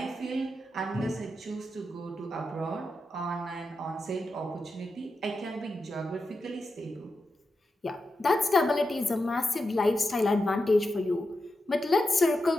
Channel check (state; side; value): normal; both; correlation 0.88